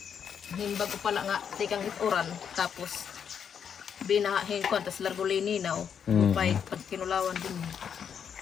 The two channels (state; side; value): quieter; right; 7.7 dB